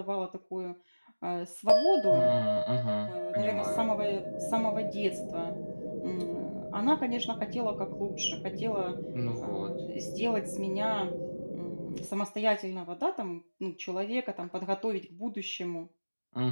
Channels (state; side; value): inverted; both; correlation -1.00